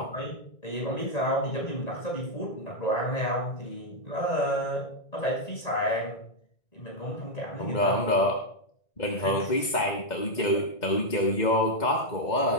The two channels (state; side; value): late; right; 1.9 ms